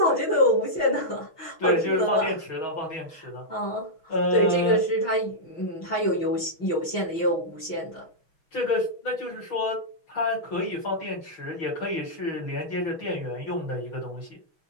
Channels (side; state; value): right; late; 6.2 ms